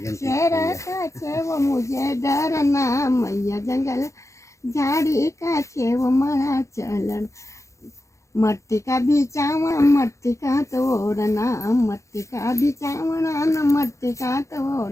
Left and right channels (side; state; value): right; late; 0.15 ms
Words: शेर का छे वो मुझे डरना मैया जंगल झाड़ी का छे वो मरा चलन मट्टी का बिचावना मट्टी का तोड़ना मट्टी का बिचावना न मट्टी का